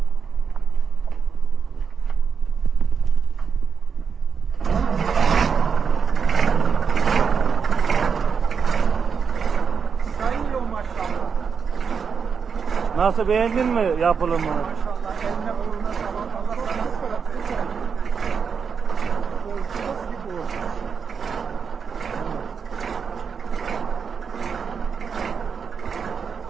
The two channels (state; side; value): quieter; left; 6.2 dB